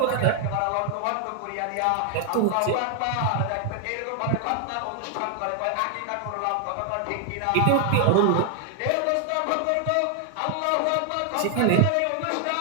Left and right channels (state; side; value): different; both; correlation 0.00